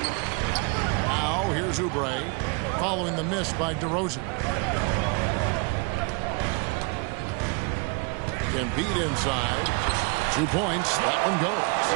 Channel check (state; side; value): quieter; left; 31.1 dB